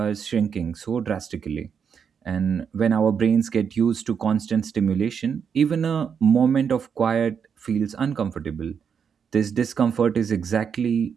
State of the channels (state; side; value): quieter; left; 7.0 dB